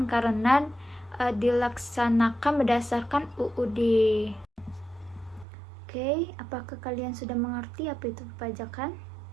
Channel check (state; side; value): drops out; left; at 5.5 s